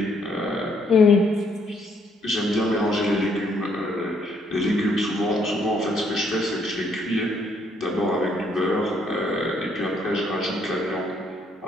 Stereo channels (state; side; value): normal; both; correlation 0.69